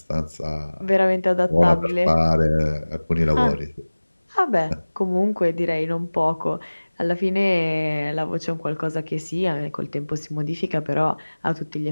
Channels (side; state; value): both; inverted; correlation -1.00